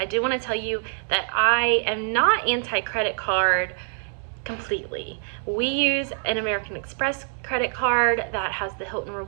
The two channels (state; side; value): silent; left; digital silence